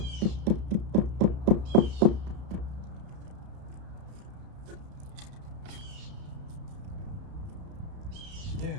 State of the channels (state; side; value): late; left; 32 ms